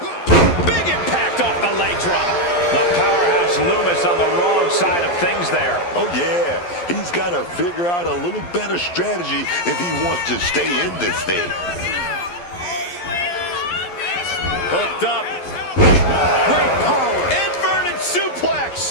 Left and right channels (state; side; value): late; right; 11 ms